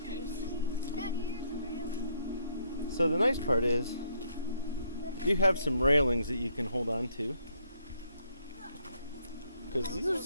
Daddy, here's a railing. So the nice part is, you have some railings that you can hold on to. Because these are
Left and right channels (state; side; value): inverted; both; correlation -0.70